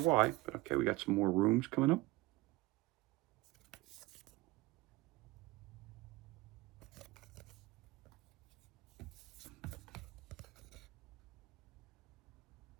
but okay, we got some more rooms coming up.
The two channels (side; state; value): left; quieter; 20.3 dB